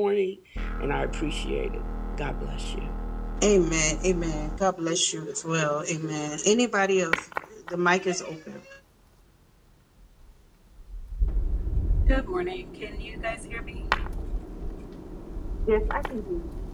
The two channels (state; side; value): identical; both; correlation 1.00